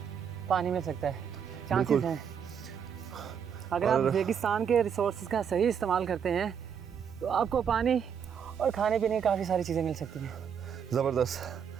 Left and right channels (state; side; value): quieter; left; 7.6 dB